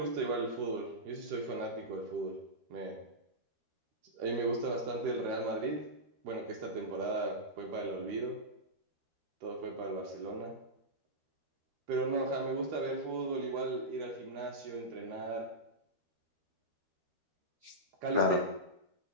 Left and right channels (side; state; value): left; late; 13 ms